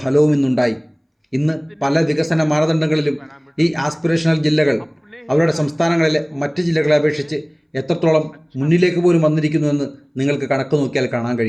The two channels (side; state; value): both; identical; correlation 1.00